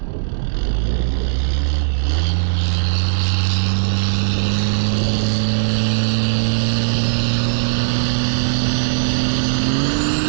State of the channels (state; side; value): silent; left; digital silence